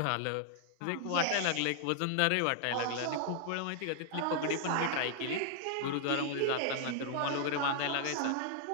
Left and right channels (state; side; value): different; both; correlation 0.00